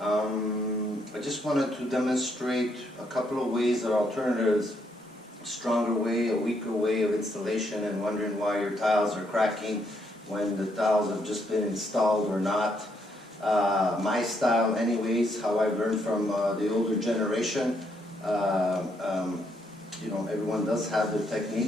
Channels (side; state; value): both; normal; correlation 0.74